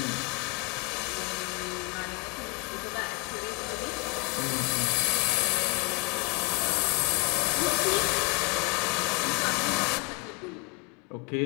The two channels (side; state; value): right; quieter; 27.3 dB